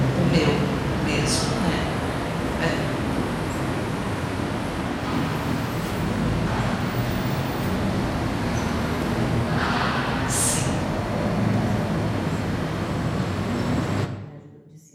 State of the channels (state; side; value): identical; both; correlation 1.00